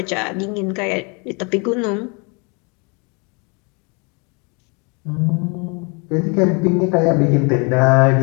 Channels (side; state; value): right; quieter; 32.4 dB